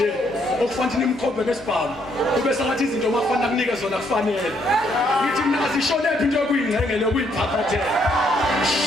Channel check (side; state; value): both; normal; correlation 0.71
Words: okufanele nimkhombe ngesibhamu. Kube sengathi izinto makufanele kunike zona kufanele. Ngithi mina asisholephi into yokuyingcengela yokuyiphaphathela.